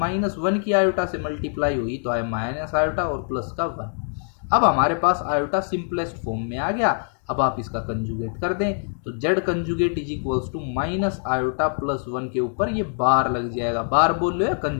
की आयोटा से मल्टीप्लाई हुई तो आया माइनस आयोटा और प्लस का 1। अब हमारे पास आयोटा सिंपलेस्ट फॉर्म में आ गया। अब आप इसका कंजुगेट कर दें तो Z conjugate is equals to minus iota plus 1 के ऊपर ये बार लग जाएगा। बार बोल लो या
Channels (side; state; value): right; silent; digital silence